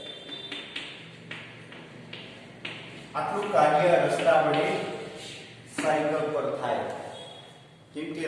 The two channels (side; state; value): both; identical; correlation 1.00